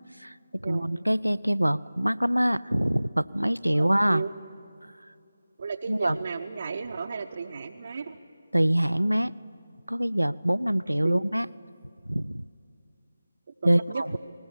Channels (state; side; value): inverted; both; correlation -0.99